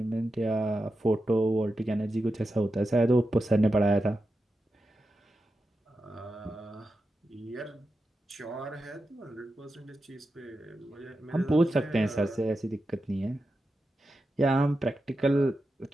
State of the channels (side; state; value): both; normal; correlation 0.90